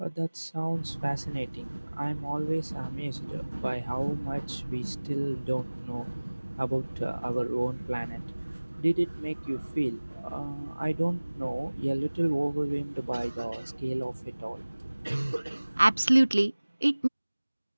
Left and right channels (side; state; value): both; inverted; correlation -1.00